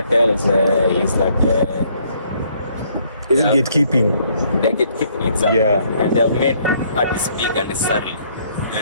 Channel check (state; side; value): inverted; both; correlation -0.66